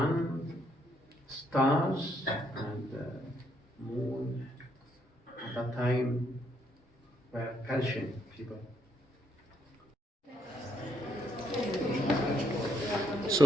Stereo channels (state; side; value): normal; both; correlation 0.73